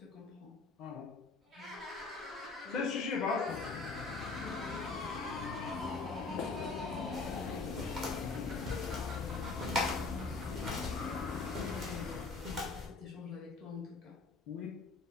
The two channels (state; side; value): quieter; right; 3.9 dB